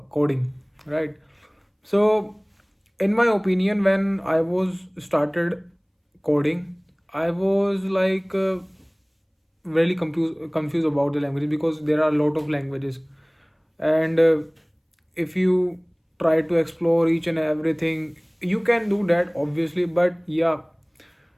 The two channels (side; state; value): both; identical; correlation 1.00